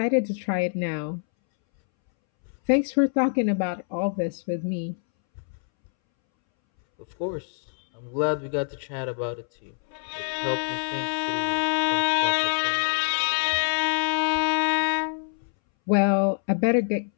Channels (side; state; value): right; silent; 61 dB below the other